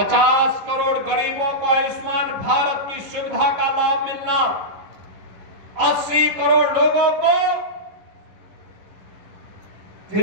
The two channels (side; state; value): left; late; 11 ms